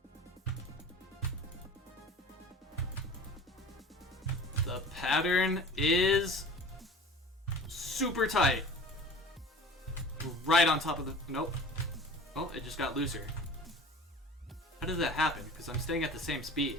The pattern is super tight. Right on top of the... Nope. Oh, it just got looser. How did that happen? Because I'm staying at the same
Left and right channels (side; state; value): both; normal; correlation 0.42